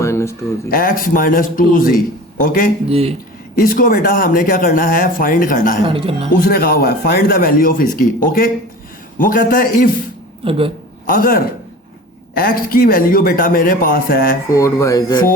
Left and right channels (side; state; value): both; normal; correlation 0.38